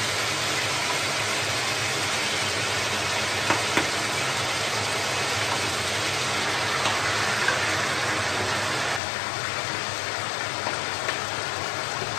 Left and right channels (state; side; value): drops out; right; at 9.0 s